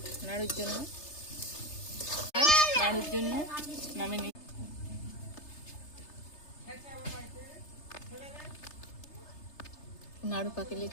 নাড়ুর জন্য। নাড়ুর জন্য নামে নিই। নাড়ু পাকিয়ে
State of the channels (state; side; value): late; right; 3.3 ms